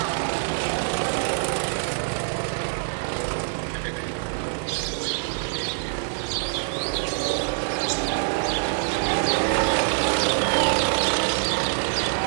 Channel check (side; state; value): left; silent; digital silence